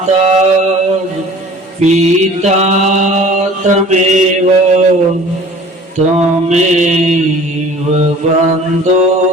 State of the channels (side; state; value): both; normal; correlation 0.46